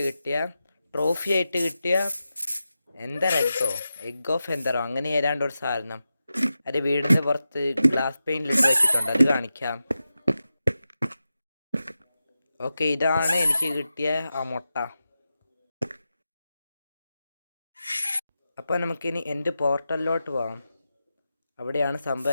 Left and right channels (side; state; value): both; inverted; correlation -0.91